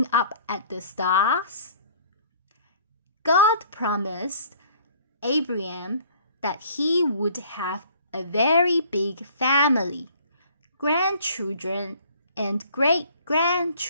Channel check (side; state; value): both; inverted; correlation -0.54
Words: up at the stars? God promised Abraham that he would have a very big family, grandchildren and